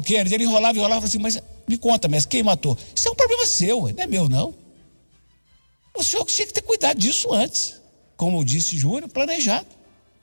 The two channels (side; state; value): both; inverted; correlation -1.00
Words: Kennedy? Ele enrolava e falava assim, mas me conta, mestre, quem matou? Isso é um problema seu, não é meu, não. O senhor tinha que ter cuidado disso antes, como disse Júnior, planejado.